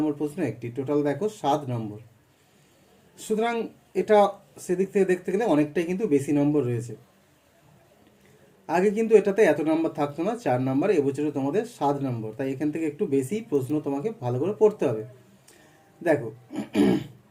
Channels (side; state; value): both; identical; correlation 1.00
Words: প্রশ্ন একটি, টোটাল দেখো 7 নম্বর। সুতরাং এটা সেদিক থেকে দেখতে গেলে অনেকটাই কিন্তু বেশি নম্বর রয়েছে। আগে কিন্তু এটাতে এত নাম্বার থাকতো না, 4 নাম্বার, এবছরে তোমাদের 7 নম্বর, তাই এখান থেকে একটু বেশি প্রশ্ন তোমাকে ভালো করে পড়তে হবে। দেখো